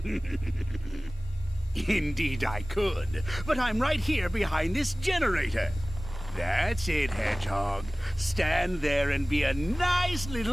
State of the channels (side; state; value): both; normal; correlation 0.98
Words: Indeed I could, but I'm right here behind this generator. That's it, Hedgehog. Stand there and be a nice